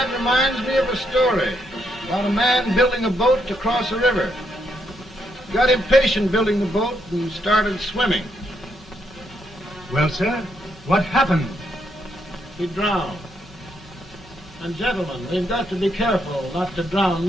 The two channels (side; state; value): both; normal; correlation 0.77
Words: reminds me of a story about a man building a boat to cross a river. Got impatient building the boat and started swimming. Well, sir, what happened? He drowned. And gentlemen, we've got to be careful not to drown